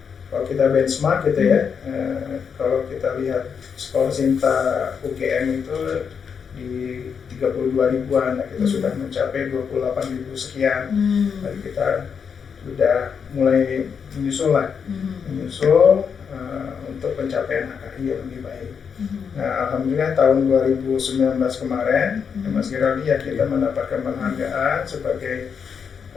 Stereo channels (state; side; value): quieter; right; 6.6 dB